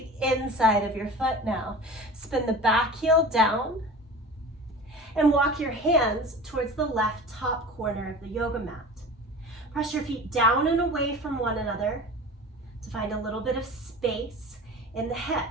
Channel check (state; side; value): normal; both; correlation 0.36